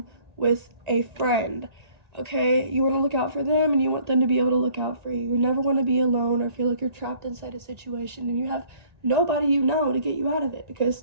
with a friend. Okay, you want to look out for them and you want them to be able to look out for you. You never want to be alone or feel like you're trapped inside a situation and you have nobody you know to get you out of it. Because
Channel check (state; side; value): late; left; 1.9 ms